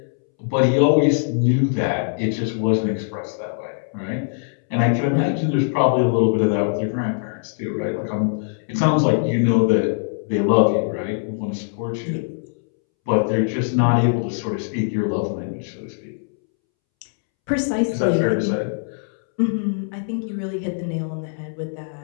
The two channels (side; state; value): right; silent; 64 dB below the other